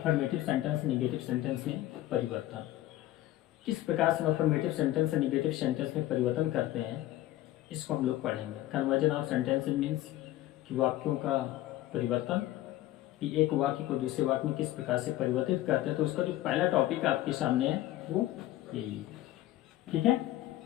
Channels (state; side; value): quieter; right; 14.9 dB